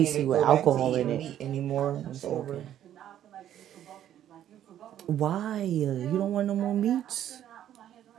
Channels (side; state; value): left; quieter; 11.1 dB